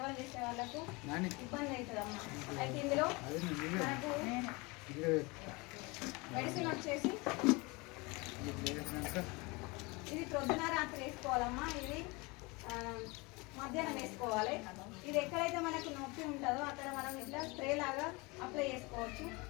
చేసే వాళ్ళకు ఇబ్బంది అవుతుంది అమ్మ. అయితే ఇందులో మనకు మెడిసిన్ వచ్చేసి ఇది ప్రొద్దున రాత్రి వేసుకోవాలమ్మా. ఇది మధ్యాహ్నం వేసుకోవాలి. ఇది ఎక్కడైతే మనకు నొప్పి ఉంటుందో అక్కడ మనం ఇట్లా స్ప్రే లాగా అప్లై చేసుకోవచ్చు.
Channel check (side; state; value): right; quieter; 26.0 dB